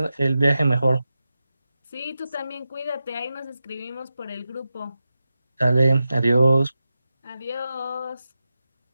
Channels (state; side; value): inverted; both; correlation -0.91